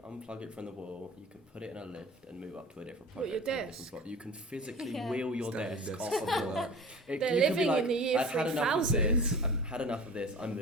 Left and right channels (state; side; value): normal; both; correlation 0.39